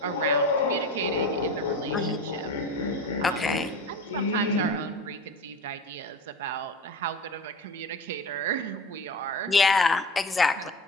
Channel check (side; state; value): both; normal; correlation 0.31